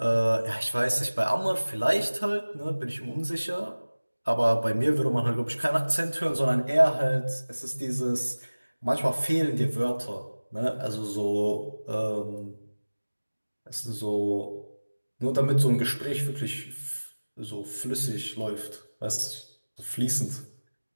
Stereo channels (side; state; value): both; inverted; correlation -1.00